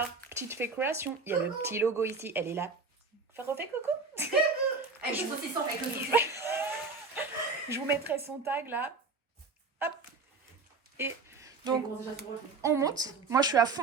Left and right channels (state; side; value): quieter; left; 4.2 dB